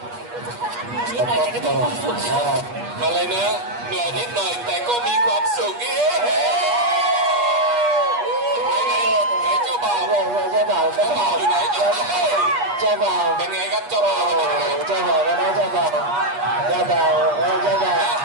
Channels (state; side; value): late; left; 8.3 ms